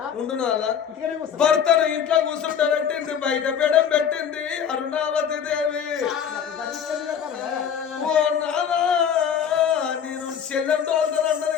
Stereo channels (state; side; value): quieter; right; 7.9 dB